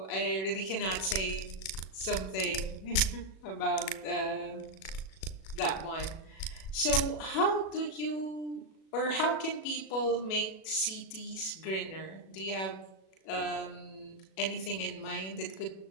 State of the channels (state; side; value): late; right; 37 ms